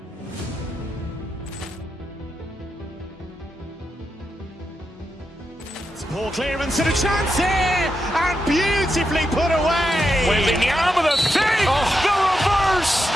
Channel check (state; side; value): normal; both; correlation 0.86